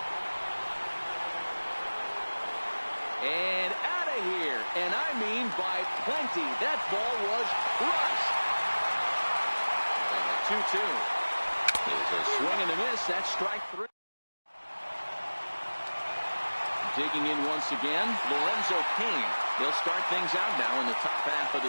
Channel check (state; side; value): inverted; both; correlation -1.00